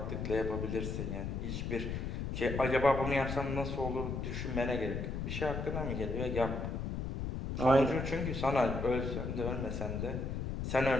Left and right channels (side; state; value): left; noise; rumble, 3 dB below the sound